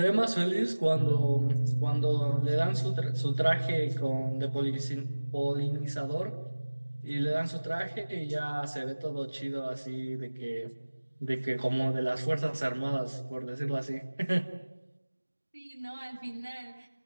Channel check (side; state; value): both; inverted; correlation -1.00